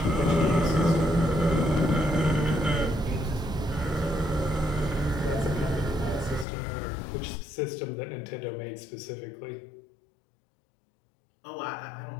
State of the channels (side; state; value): right; drops out; at 6.5 s